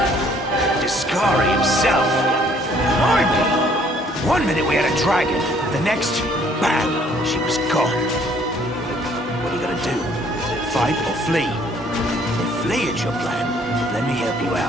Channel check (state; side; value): normal; both; correlation 0.61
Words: Discari himself. Blimey! One minute we had a dragon, the next, bam, she was gone. What are you gonna do? Fight or flee? If flee is your plan, let me help you